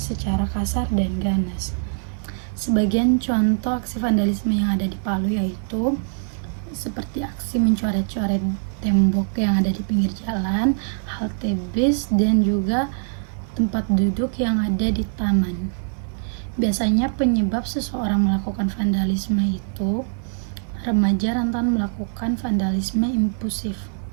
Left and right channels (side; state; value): left; silent; 63 dB below the other